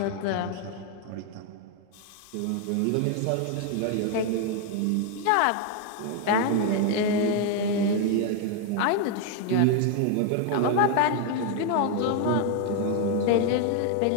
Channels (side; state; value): both; different; correlation 0.01